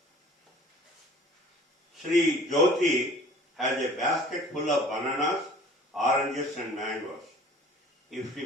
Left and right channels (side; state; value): both; normal; correlation 0.49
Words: Sri Jyoti has a basket full of bananas, oranges and mangoes. If